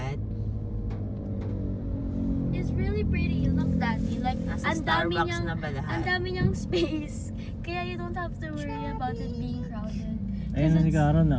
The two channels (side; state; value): both; identical; correlation 1.00